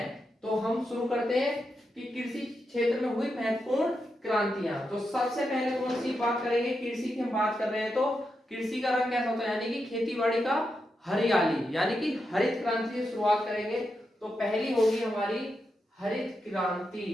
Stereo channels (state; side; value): normal; both; correlation 0.86